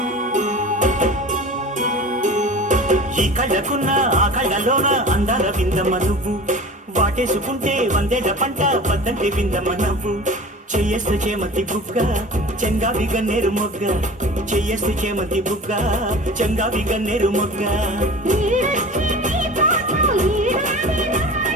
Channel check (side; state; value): both; normal; correlation 0.38